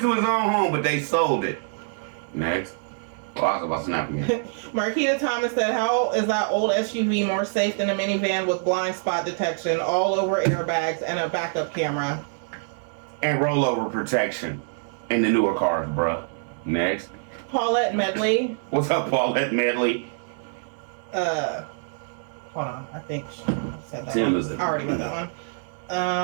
to his own home, but they sold it. Next. Well, I was about to snap again. Marquita Thomas said, how is that old SUV more safe than a minivan with blind spot detection, all over airbags, and a backup camera? And rollover protection in the newer cars, bruh. Next. Paulette Medley. What's up, Paulette Medley? Hold on. I think she said that Tim one. is it? I already read that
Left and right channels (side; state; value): left; silent; digital silence